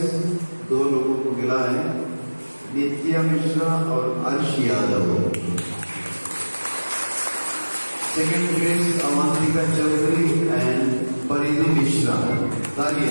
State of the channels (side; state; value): both; inverted; correlation -1.00